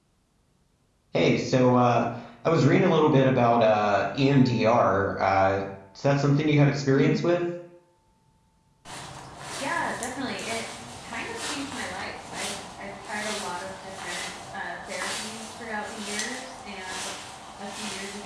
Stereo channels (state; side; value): identical; both; correlation 1.00